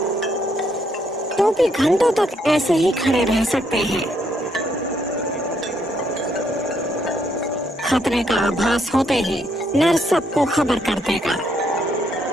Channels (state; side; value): normal; both; correlation 0.73